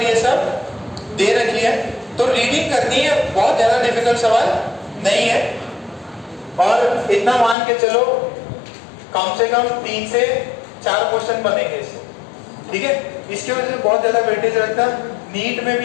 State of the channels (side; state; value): right; drops out; at 7.6 s